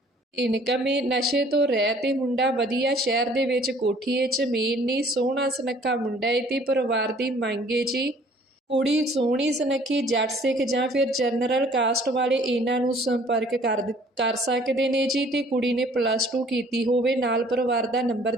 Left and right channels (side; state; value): both; normal; correlation 0.56